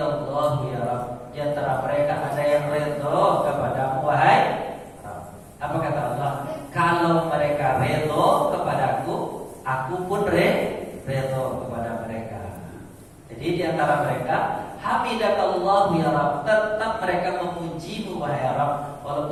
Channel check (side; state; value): both; identical; correlation 1.00